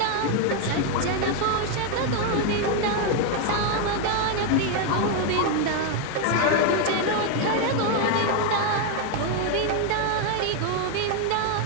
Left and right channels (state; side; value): different; both; correlation 0.01